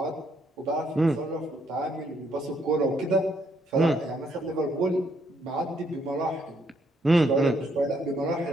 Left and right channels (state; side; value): normal; both; correlation 0.72